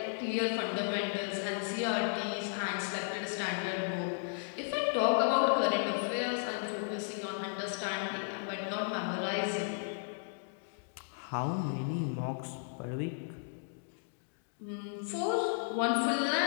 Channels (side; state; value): right; silent; digital silence